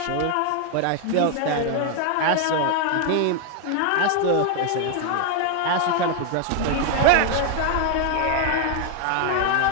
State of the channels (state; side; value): different; both; correlation 0.01